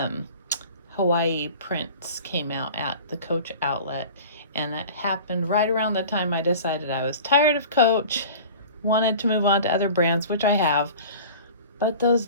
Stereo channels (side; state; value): both; inverted; correlation -0.40